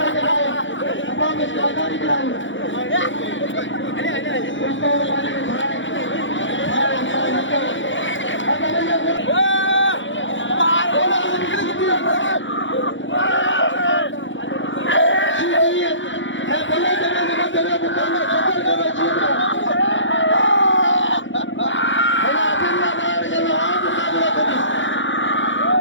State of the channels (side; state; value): right; late; 0.55 ms